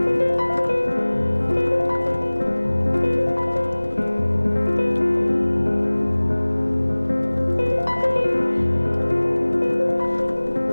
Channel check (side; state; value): both; inverted; correlation -1.00